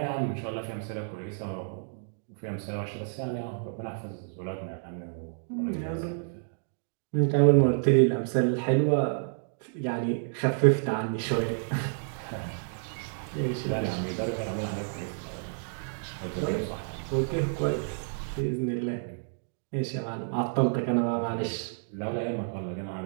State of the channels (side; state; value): left; silent; digital silence